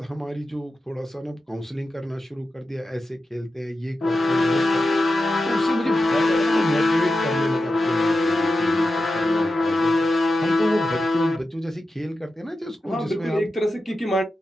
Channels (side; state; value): both; normal; correlation 0.91